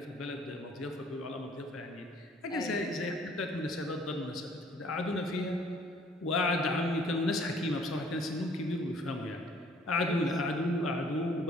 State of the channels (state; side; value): normal; both; correlation 0.58